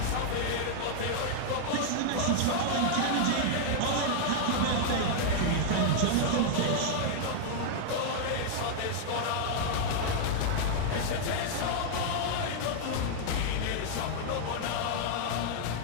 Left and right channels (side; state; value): both; different; correlation -0.01